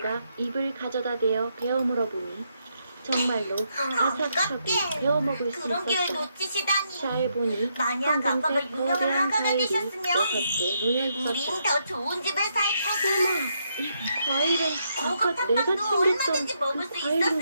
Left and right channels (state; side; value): inverted; both; correlation -0.78